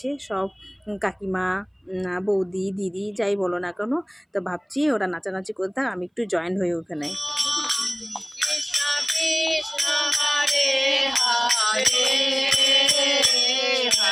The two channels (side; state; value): both; identical; correlation 1.00